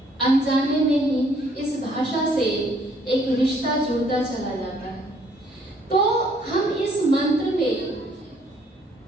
अनजाने में ही इस भाषा से एक रिश्ता जुड़ता चला जाता है। तो हम इस मंत्र में,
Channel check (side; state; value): both; normal; correlation 0.64